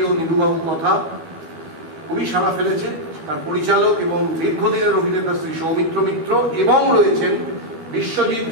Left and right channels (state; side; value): late; left; 12 ms